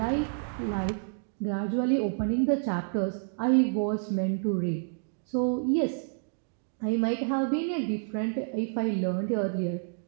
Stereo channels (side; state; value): left; silent; digital silence